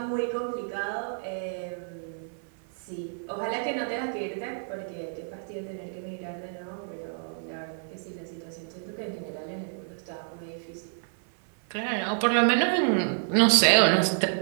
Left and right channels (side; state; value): left; silent; 59 dB below the other